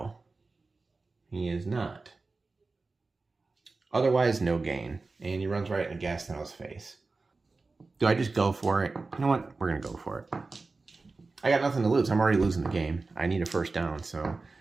He is not. Otherwise, no gain. And he runs right in Gastineau's face. Do I just go for it? You know what? We're going to go for it. I got nothing to lose. I'm already losing the game. I need a first down, so...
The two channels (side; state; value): left; quieter; 3.8 dB